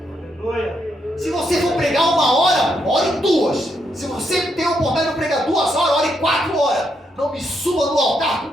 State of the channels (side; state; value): both; normal; correlation 0.79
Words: Aleluia. Se você for pregar 1 hora, ore 2. Se você tem a oportunidade de pregar 2 horas, ore 4 horas. Não me suba no altar